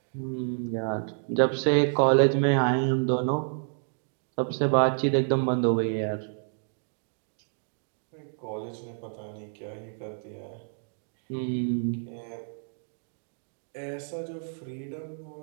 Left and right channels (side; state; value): left; silent; digital silence